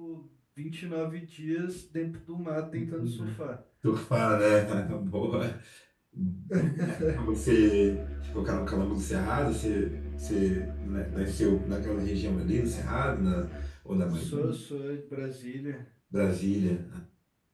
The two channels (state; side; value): identical; both; correlation 1.00